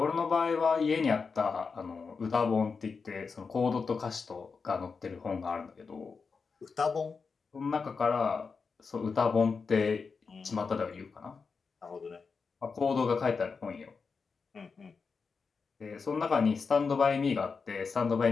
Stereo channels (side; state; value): right; quieter; 5.1 dB